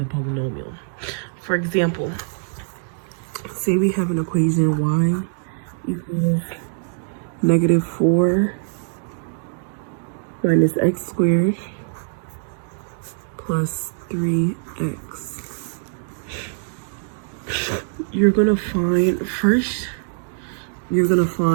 polynomial. For example, say we have an equation y equals -4 minus x squared plus 3x. You're gonna find,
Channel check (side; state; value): left; silent; digital silence